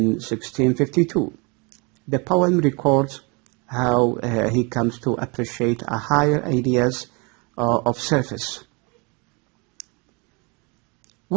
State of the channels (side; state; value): left; quieter; 29.9 dB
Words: 1652. The poem records how he comes to appreciate a higher ideas of surface.